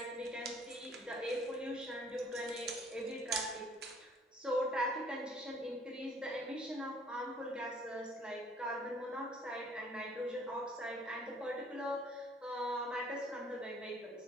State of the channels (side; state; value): both; normal; correlation 0.58